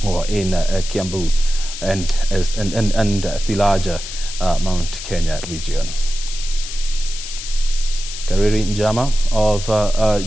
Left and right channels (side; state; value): left; noise; hiss, 9 dB below the sound